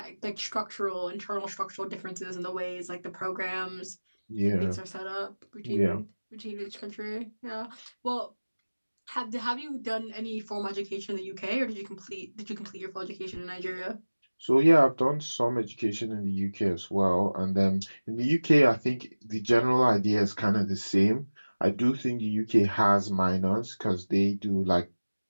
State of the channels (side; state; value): both; inverted; correlation -1.00